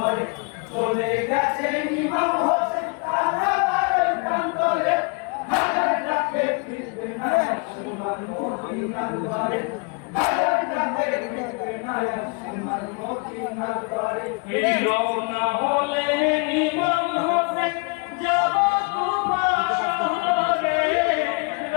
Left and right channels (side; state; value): right; quieter; 33.2 dB